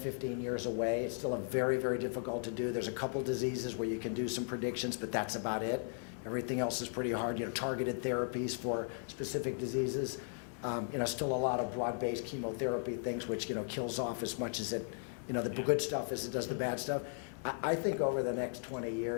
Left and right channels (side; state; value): right; silent; 53 dB below the other